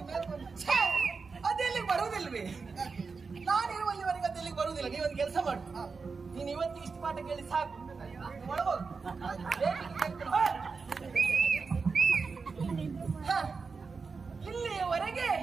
ಮೇಲ್ ಬಂತು. ಅದೆಲ್ಲಿಗೆ ಬರುವುದಿಲ್ವೇ? ನಾನಿರುವಲ್ಲಿವರೆಗೆ ಅದೆಲ್ಲಿಗೆ ಬರುವುದಿಲ್ಲ. ನೀವೊಂದು ಕೆಲಸ ಮಾಡು, ನೀನು ಇವತ್ತಿಗೆ ಇಷ್ಟು ಪಾಠ ಕೇಳಿ ಸಾಕು. ಒಳಗೋದು ಇಲ್ಲಿಯವರೆಗೆ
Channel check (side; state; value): left; quieter; 4.8 dB